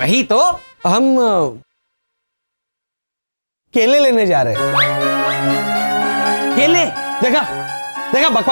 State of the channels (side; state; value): both; inverted; correlation -1.00